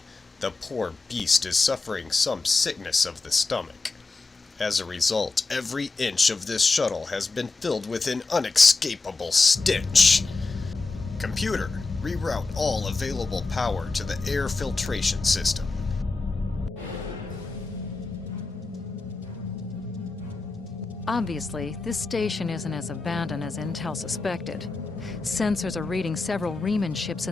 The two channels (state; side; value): quieter; right; 3.7 dB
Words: the poor beast is suffering some sickness of the stomach. As a result, every inch of this shuttle has been filled with an unescapable stench. Computer, reroute all available power to the air filtration system. Obviously, this station isn't as abandoned as Intel suspected. Sensors are reading several Riemann ships